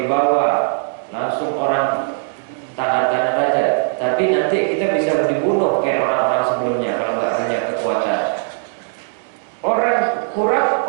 langsung orang taatan raja. Tapi nanti kita bisa dibunuh kayak orang-orang sebelumnya kalau nggak punya kekuatan. Orang kurap,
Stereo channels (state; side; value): silent; left; digital silence